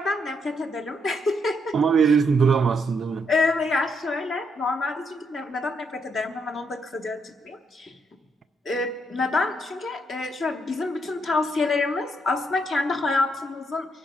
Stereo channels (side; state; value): both; normal; correlation 0.76